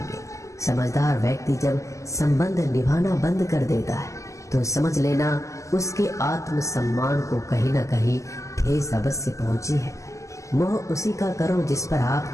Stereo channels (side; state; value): right; late; 0.15 ms